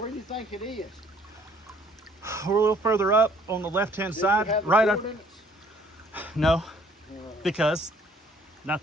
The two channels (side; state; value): both; normal; correlation 0.60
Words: do you think it is? We're a little further up on the left-hand Do side, you have the right up. coordinates? No, Uh, because